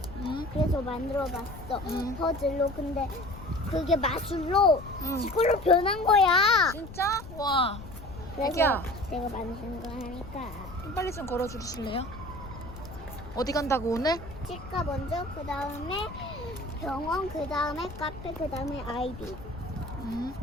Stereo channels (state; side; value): noise; left; rumble, 14 dB below the sound